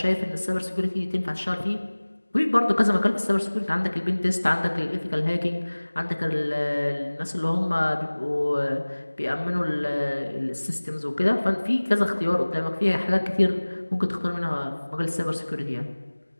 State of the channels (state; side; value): inverted; both; correlation -1.00